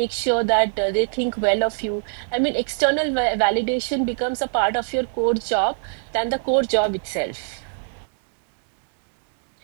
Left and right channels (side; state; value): left; silent; digital silence